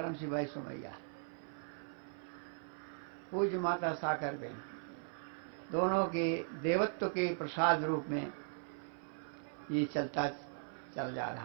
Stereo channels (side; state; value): left; silent; 52 dB below the other